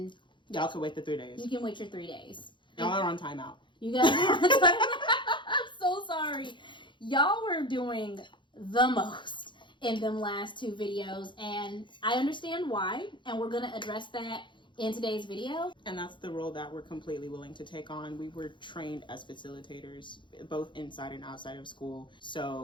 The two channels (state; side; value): late; right; 0.23 ms